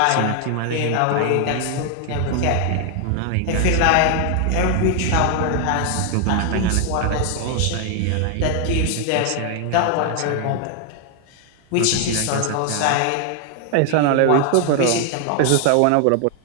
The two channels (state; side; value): different; both; correlation 0.00